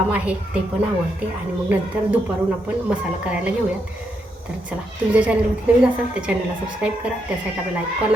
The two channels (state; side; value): normal; both; correlation 0.80